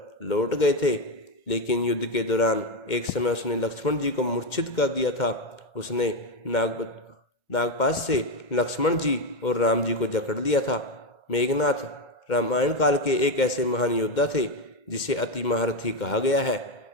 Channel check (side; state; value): right; late; 2.1 ms